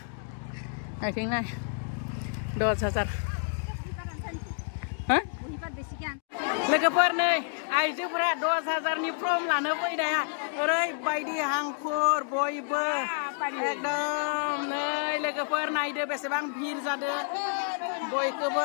आथिं नाय 10,000 लोगोफोर नै आइजोफोरा 10,000नि फर्म लानो फैनाया ओरैबायदि हांखुर बयबो एकदम नै लोगोफोर नायदो बेसेबां भिर जादो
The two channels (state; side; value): silent; right; digital silence